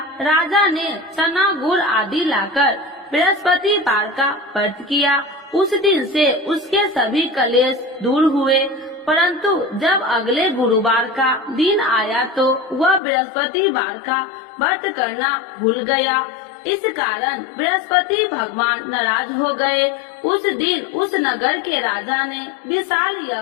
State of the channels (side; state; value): right; drops out; at 13.0 s